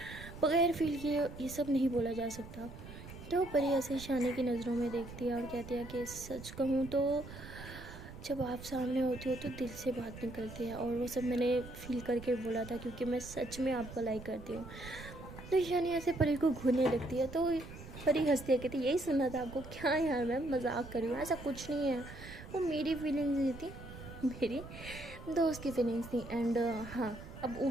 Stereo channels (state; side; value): noise; right; rumble, 13 dB below the sound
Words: बगैर फील किए ये सब नहीं बोला जा सकता। तो परी ऐसे ईशानी की नज़रों में देखती है और कहती है कि सच कहूँ तो जब आप सामने होती हो तो दिल से बात निकलती है और वो सब मैंने फील करके बोला था क्योंकि मैं सच में आपको लाइक करती हूँ। तो ईशानी ऐसे परी को घूरने लगती है। तो परी हंसती है, कहती यही सुनना था आपको, क्या यार मैं मजाक कर रही हूँ, ऐसा कुछ नहीं है, वो मेरी फीलिंग्स नहीं थी, मेरी दोस्त की फीलिंग्स थी एंड हाँ अब